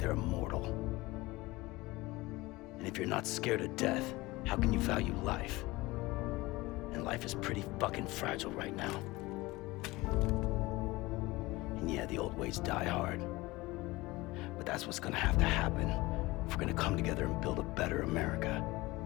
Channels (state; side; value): quieter; right; 20.8 dB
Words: immortal. And if you're not scared of death, how can you value life? And life is pretty fucking fragile right now. And yeah, the old ways die hard. But that's what's gonna have to happen if we're gonna come together and build a better America.